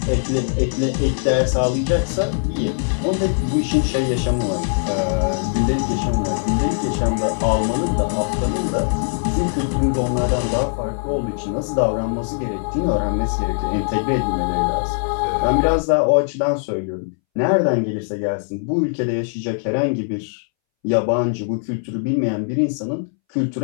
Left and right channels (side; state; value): right; silent; 64 dB below the other